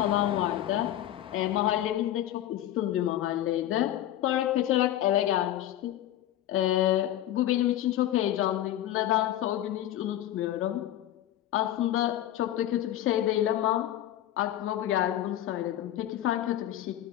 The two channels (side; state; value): right; quieter; 12.7 dB